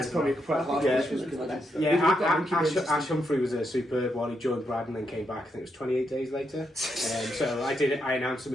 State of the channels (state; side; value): normal; both; correlation 0.81